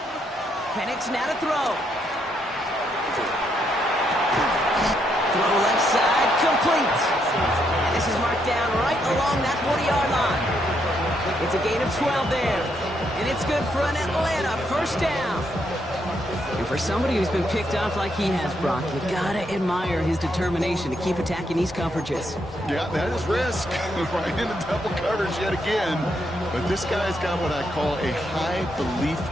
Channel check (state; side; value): normal; both; correlation 0.77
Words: Penix now to throw. Throw left side, complete. And this is marked down right along that 40-yard line. It's a gain of 12 there. And it's good for an Atlanta first down. And for somebody who's been picked off like he has, Brock, you gotta admire his determination to keep attacking these coverages. Yeah, that is risk. Right into double coverage yet again. But this guy's got what I call a high belief